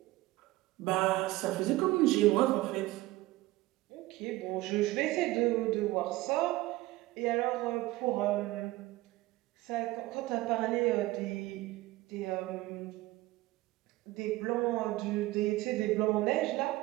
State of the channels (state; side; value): quieter; left; 18.4 dB